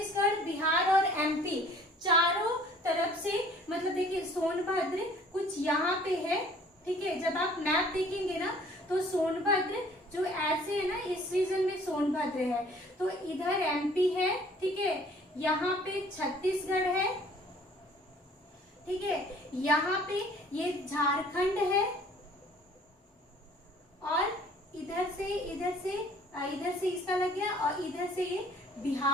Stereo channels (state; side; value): normal; both; correlation 0.54